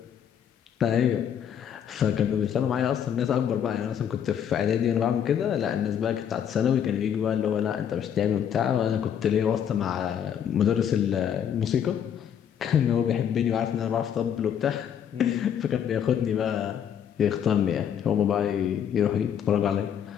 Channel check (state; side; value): quieter; right; 8.8 dB